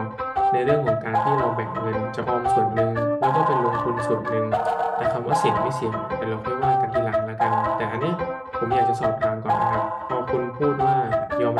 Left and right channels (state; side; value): identical; both; correlation 1.00